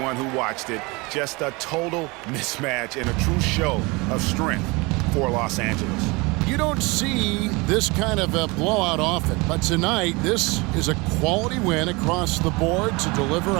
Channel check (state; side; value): quieter; left; 25.8 dB